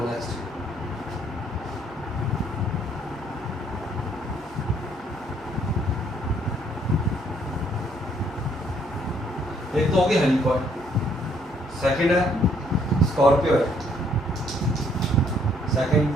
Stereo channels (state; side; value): normal; both; correlation 0.66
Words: नेक्स्ट। एक तो होगी हेलिकॉइड, सेकंड है स्कॉर्पियो है। सेकंड